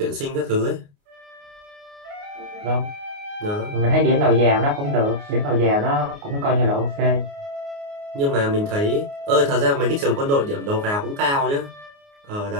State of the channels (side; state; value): left; late; 29 ms